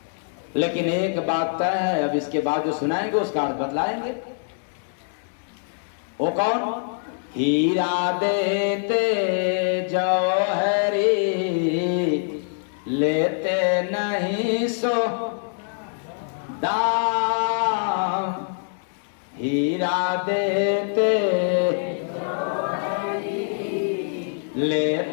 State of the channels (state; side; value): silent; right; digital silence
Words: लेकिन एक बात तय है, अब इसके बाद जो सुनाएंगे उसका अर्थ बतलाएंगे। वो कौन? हीरा देते जौहरी, लेते नहीं सो दाम। हीरा देते